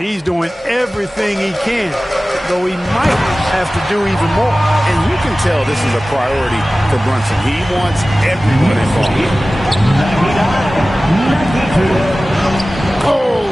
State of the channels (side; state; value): both; normal; correlation 0.97